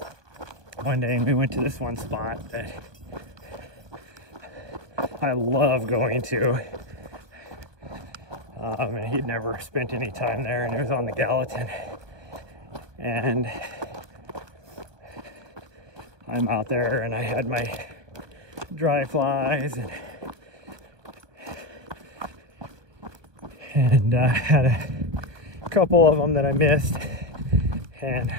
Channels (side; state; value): left; late; 1.3 ms